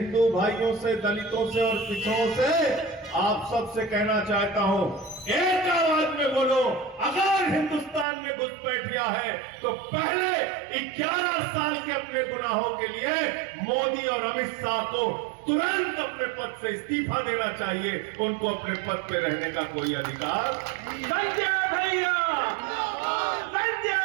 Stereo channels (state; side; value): drops out; left; at 8.1 s